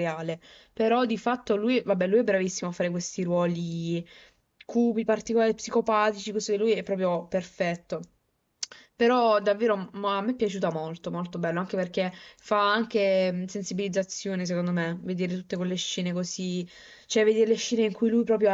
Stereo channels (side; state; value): both; identical; correlation 1.00